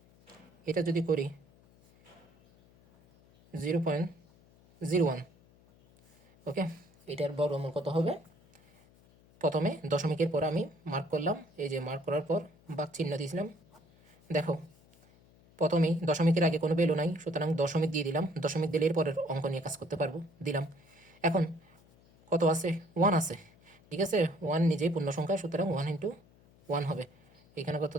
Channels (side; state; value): left; noise; hum, 28 dB below the sound